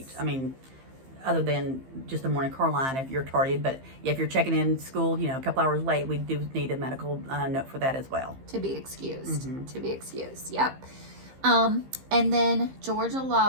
I mean, other than just the morning car line if you're tardy, but if you're checking in school, a couple hours late, we do need a medical note for that as well. To be excused. To be excused. Yep. And then Georgia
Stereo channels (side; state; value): left; late; 15 ms